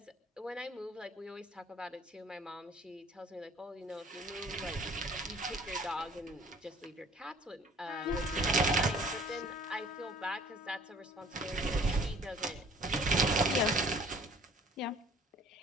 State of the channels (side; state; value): both; normal; correlation 0.54